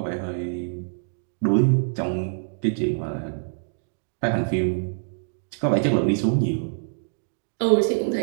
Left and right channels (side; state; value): left; silent; digital silence